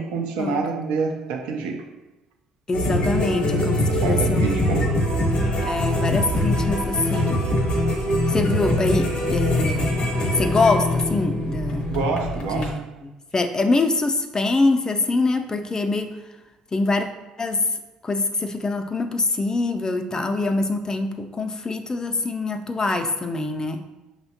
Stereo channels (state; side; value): normal; both; correlation 0.63